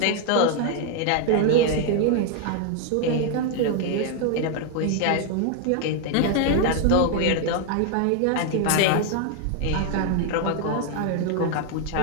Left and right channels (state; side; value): different; both; correlation 0.00